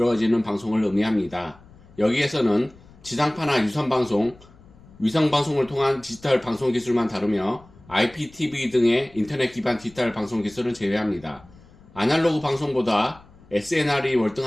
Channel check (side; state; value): left; noise; rumble, 24 dB below the sound